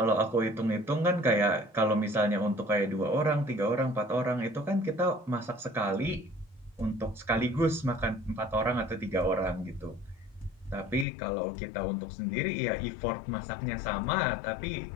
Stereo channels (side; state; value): right; drops out; at 11.1 s